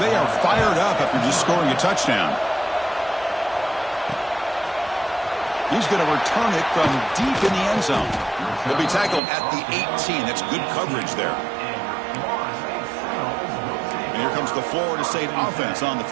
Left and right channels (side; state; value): left; drops out; at 9.2 s